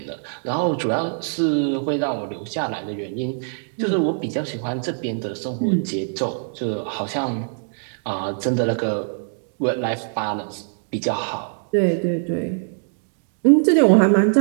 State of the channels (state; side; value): silent; left; digital silence